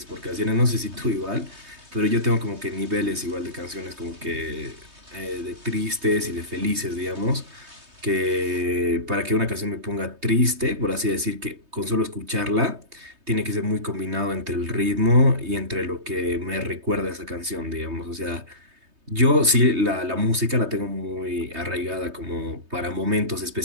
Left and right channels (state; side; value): late; left; 3.2 ms